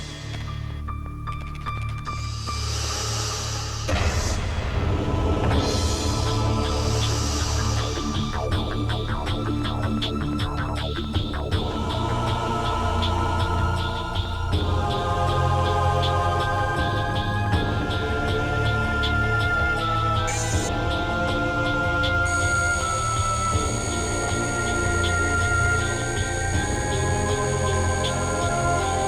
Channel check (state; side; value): identical; both; correlation 1.00